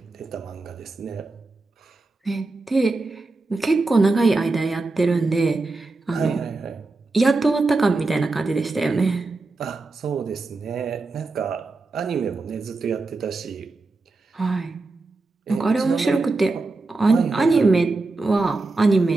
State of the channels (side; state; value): left; quieter; 3.4 dB